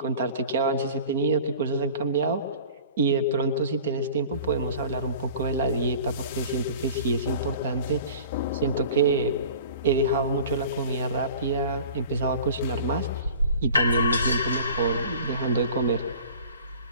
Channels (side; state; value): both; inverted; correlation -0.43